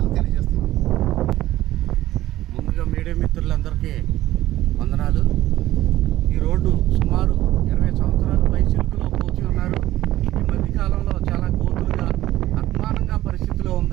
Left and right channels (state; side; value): quieter; left; 14.9 dB